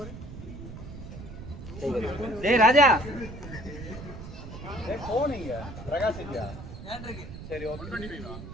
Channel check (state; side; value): noise; right; rumble, 11 dB below the sound